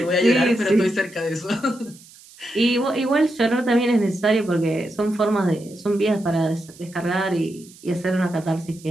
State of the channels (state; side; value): noise; right; hiss, 23 dB below the sound